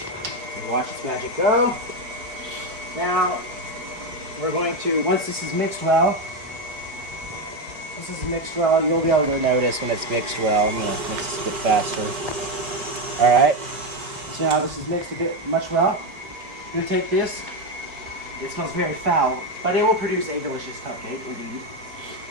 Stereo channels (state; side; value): late; left; 4.5 ms